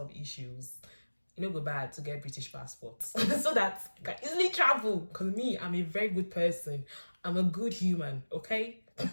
issues. You know, go bad to get British passports so that I can easily travel, because me, I'm a very good person. I'm a good human, okay?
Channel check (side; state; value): both; inverted; correlation -1.00